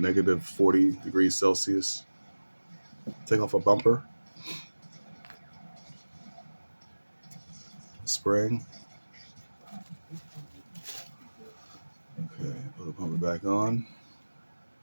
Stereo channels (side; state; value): both; inverted; correlation -1.00